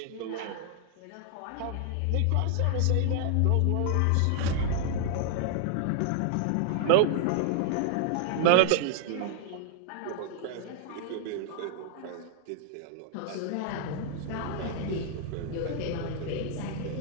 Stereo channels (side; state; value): both; different; correlation 0.00